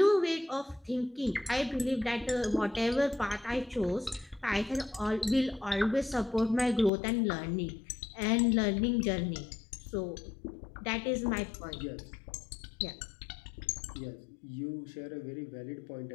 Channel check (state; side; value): drops out; right; at 6.9 s